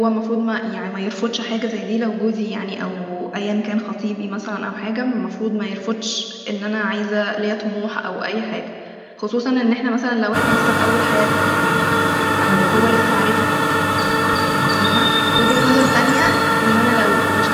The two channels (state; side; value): identical; both; correlation 1.00